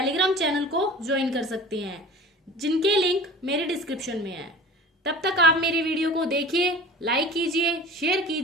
चैनल को ज्वाइन कर सकते हैं, जिनके लिंक मेरे डिस्क्रिप्शन में है। तब तक आप मेरी वीडियो को देखिए, लाइक कीजिए, शेयर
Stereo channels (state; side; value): normal; both; correlation 0.40